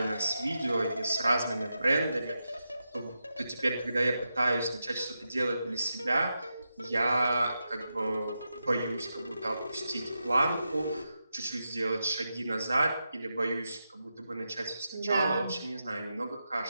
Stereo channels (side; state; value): both; inverted; correlation -0.88